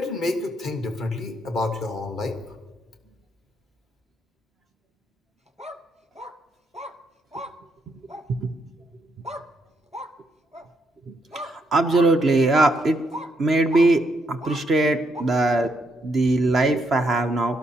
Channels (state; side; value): normal; both; correlation 0.77